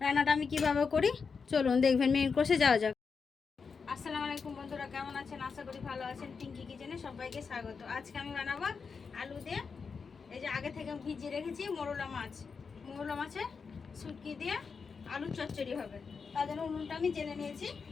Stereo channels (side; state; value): right; quieter; 5.4 dB